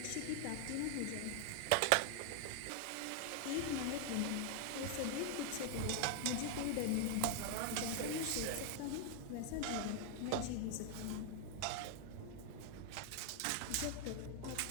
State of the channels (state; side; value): different; both; correlation 0.00